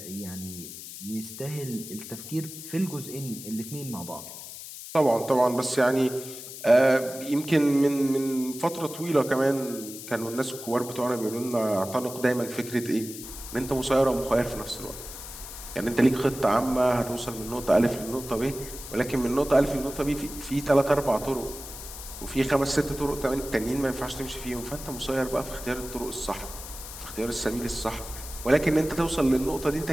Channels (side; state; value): left; noise; hiss, 12 dB below the sound